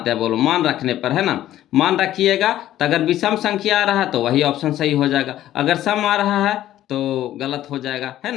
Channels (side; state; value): right; quieter; 13.1 dB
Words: हैं बोलो, मान रखने पर, है ना। मान रखिएगा तो अगर विषम संख्या आ रहा है तो वही ऑप्शन सही हो जाएगा, अगर सम आ रहा है तो गलत हो जाएगा, है